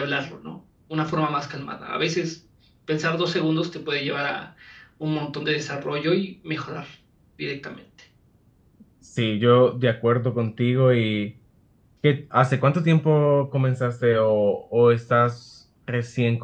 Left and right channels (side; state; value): both; identical; correlation 1.00